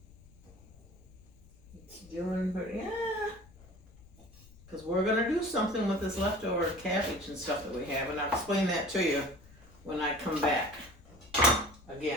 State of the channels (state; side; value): noise; left; rumble, 23 dB below the sound